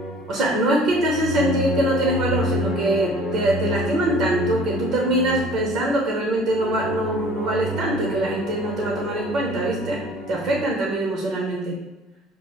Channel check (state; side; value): normal; both; correlation 0.50